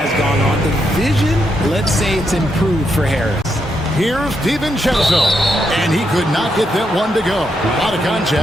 gone on, the vision, let's say it's improved for Harris. Here's DiVincenzo, and he could not get that one to go. Out of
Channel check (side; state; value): both; normal; correlation 0.80